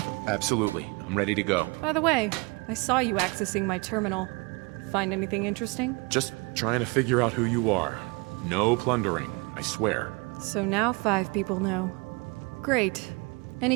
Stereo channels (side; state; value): left; quieter; 28.6 dB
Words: absolutely. I'm ready to go. By the way, I saw you accessing my terminal. Find anything interesting? Just trying to figure out who you are. No plundering, I swear. So now 5 people know. Great. Any